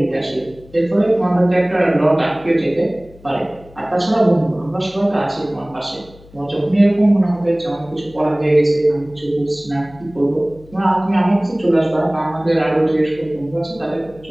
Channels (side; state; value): left; noise; hum, 23 dB below the sound